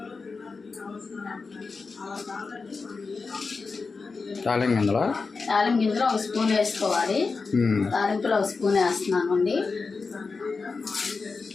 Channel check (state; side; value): quieter; right; 4.4 dB